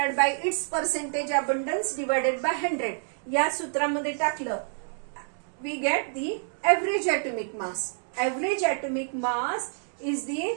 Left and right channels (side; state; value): left; silent; digital silence